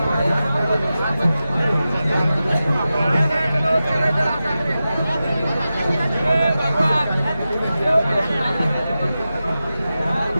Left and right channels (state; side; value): inverted; both; correlation -0.93